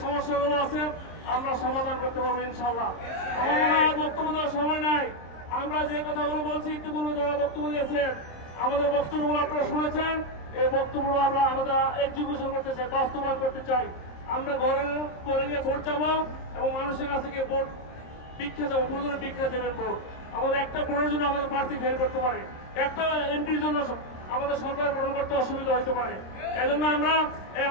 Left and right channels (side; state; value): right; late; 26 ms